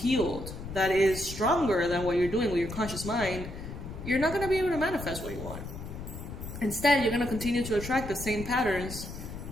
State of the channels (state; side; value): noise; left; rumble, 9 dB below the sound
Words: that is stronger than what you're doing with your conscious mind, you're not going to be able to manifest what you want. Instead, you're going to continue to attract the same patterns